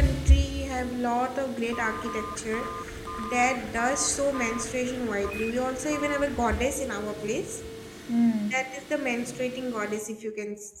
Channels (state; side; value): identical; both; correlation 1.00